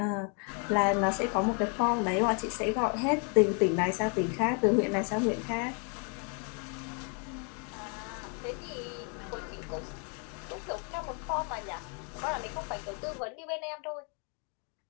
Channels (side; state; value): right; quieter; 39.0 dB